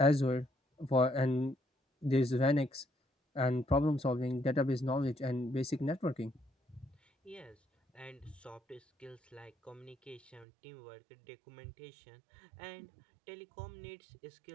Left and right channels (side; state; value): left; drops out; at 10.5 s